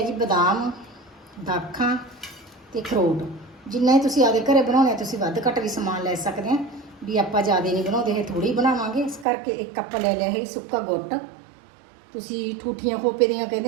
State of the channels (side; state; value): left; drops out; at 9.2 s